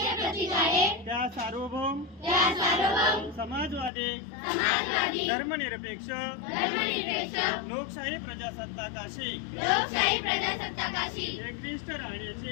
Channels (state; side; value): drops out; right; at 3.9 s